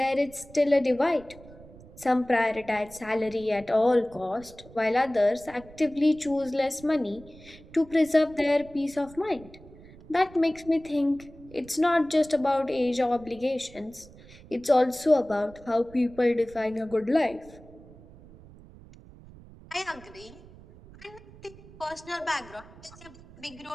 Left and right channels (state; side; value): noise; right; rumble, 21 dB below the sound